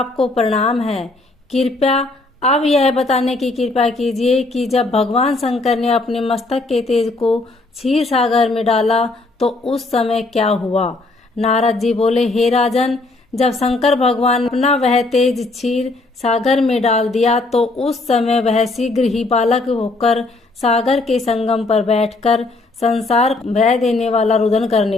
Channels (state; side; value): quieter; right; 3.2 dB